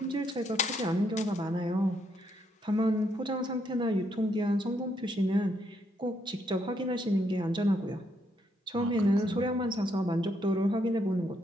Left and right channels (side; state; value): both; normal; correlation 0.75